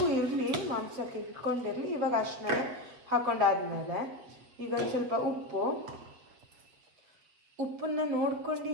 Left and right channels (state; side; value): late; left; 7.6 ms